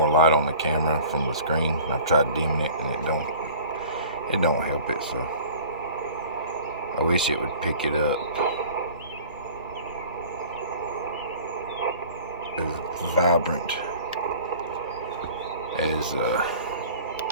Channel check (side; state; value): both; inverted; correlation -0.46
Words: light on the camera from the screen. I've tried dimming it, and it don't help it. So I wish it would pick it up as vibrant as